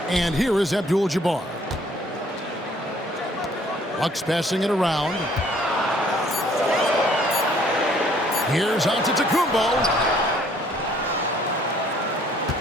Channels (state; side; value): normal; both; correlation 0.61